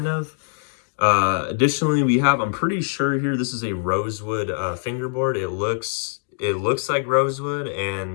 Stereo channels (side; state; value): right; silent; digital silence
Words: of. Additionally, I'm pretty sure here this is a rosewood fingerboard. It looks like rosewood,